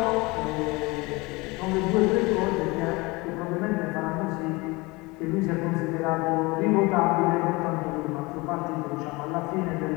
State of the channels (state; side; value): quieter; right; 24.2 dB